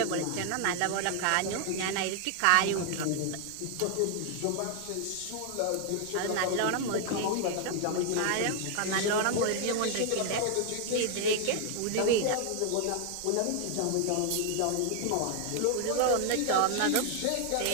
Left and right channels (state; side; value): different; both; correlation 0.00